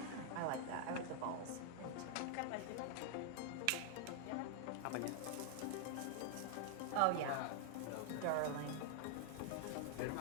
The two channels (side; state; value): both; different; correlation 0.00